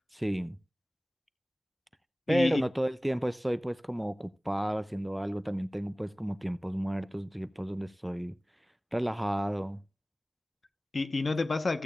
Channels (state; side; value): normal; both; correlation 0.98